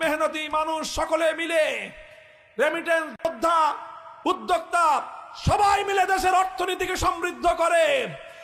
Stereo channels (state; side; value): identical; both; correlation 1.00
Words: মেহনতি মানুষ সকলে মিলে, রেমিটেন্স যোদ্ধা, উদ্যোক্তা সবাই মিলে দেশের অর্থনীতিকে সমৃদ্ধ করে।